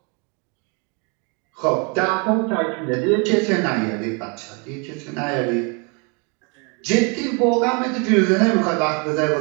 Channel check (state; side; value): quieter; left; 33.1 dB